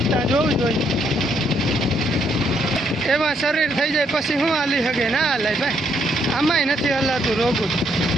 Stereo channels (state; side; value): normal; both; correlation 0.72